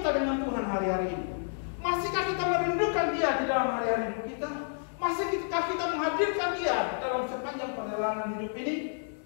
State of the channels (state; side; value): silent; right; digital silence